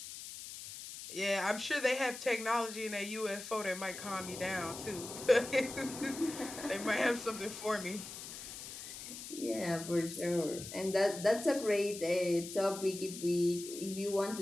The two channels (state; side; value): noise; left; hiss, 10 dB below the sound